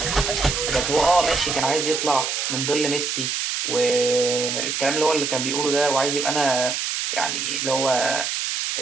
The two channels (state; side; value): noise; right; hiss, 2 dB below the sound